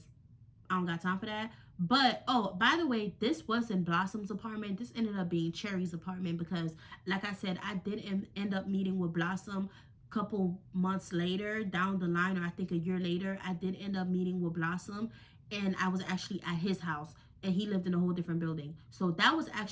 I don't got time for that. But, oh, by the way, this wasn't Blossom's apartment. This ended up being Cherry's apartment because, like I said, I did end up meeting with Blossom a couple months later down the line, or I think a year later. I did end up meeting with Blossom, and I was actually at his house, and he lived in a whole different building. So that was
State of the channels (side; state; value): both; identical; correlation 1.00